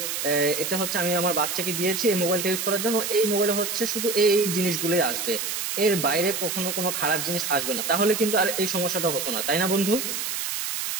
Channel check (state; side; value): noise; right; hiss, 3 dB below the sound